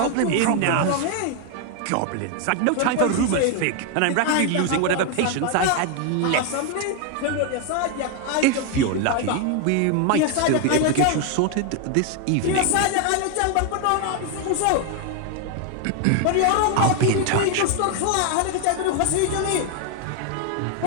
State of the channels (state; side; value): different; both; correlation 0.01